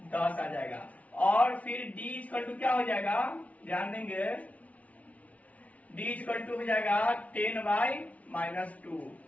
10 आ जाएगा, और फिर d इक्वल टू क्या हो जाएगा, ध्यान देंगे d इक्वल टू हो जाएगा 10/-2,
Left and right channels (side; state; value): right; late; 0.068 ms